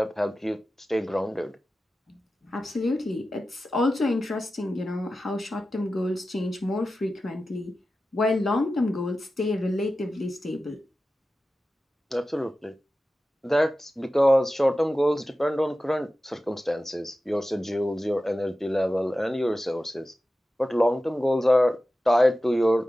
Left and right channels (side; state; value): both; normal; correlation 0.94